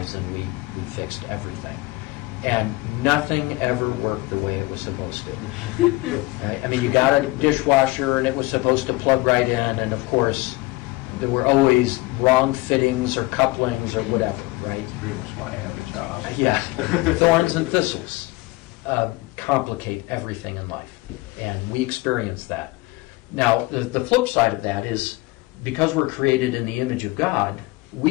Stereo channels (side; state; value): right; quieter; 21.4 dB